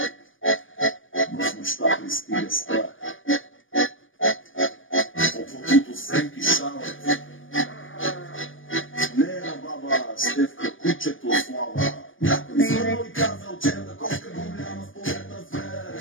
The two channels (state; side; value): late; right; 0.57 ms